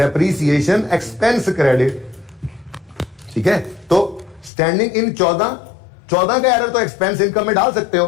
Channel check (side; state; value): right; drops out; at 4.5 s